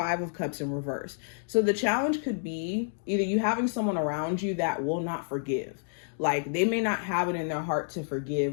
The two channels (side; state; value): right; silent; digital silence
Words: of Cups in reverse. So the challenge could be either you having someone around you that will not forgive. Like they may not have it in their heart to forgive,